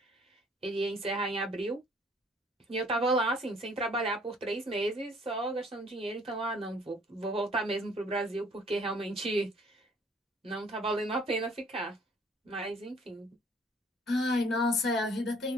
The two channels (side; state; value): both; normal; correlation 0.58